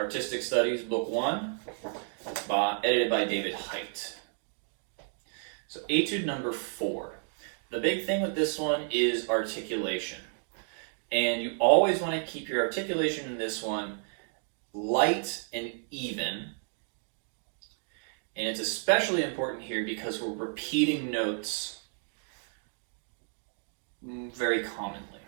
Studies Book 1, edited by David Height. So Etude number 4. The big thing with this one is articulation. And you always want to keep your articulation in this one light and even. And it's especially important here because we're repeating notes very commonly.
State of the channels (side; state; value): left; silent; 57 dB below the other